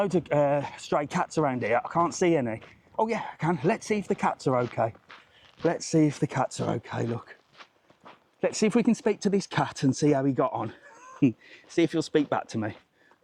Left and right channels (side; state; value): both; identical; correlation 1.00